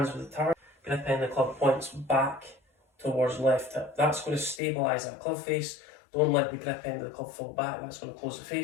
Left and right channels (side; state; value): right; drops out; at 4.6 s